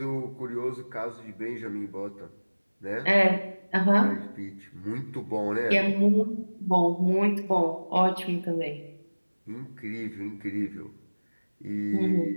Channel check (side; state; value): both; inverted; correlation -1.00